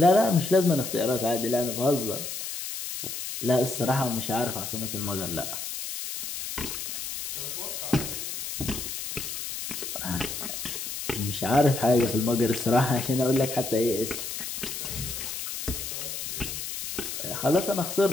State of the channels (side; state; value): left; noise; hiss, 6 dB below the sound